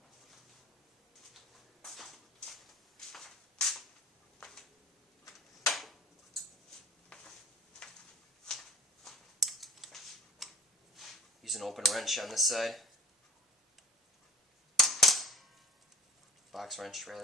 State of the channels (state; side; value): normal; both; correlation 0.43